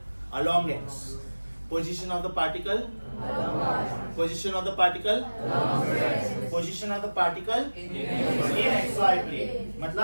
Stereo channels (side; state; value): both; inverted; correlation -1.00